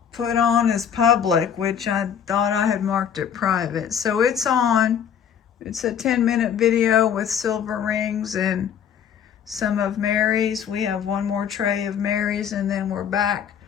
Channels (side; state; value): right; quieter; 8.3 dB